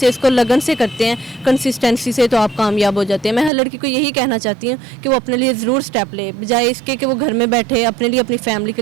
इसको लगन से करते हैं, कंसिस्टेंसी से, तो आप कामयाब हो जाते हैं। मैं हर लड़की को यही कहना चाहती हूँ कि वो अपने लिए ज़रूर स्टेप ले, बजाय इसके कि वो घर में बैठे, अपने लिए, अपनी फैमिली के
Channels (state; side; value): drops out; left; at 3.5 s